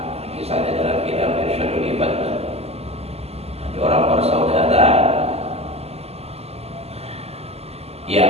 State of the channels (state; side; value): late; left; 0.30 ms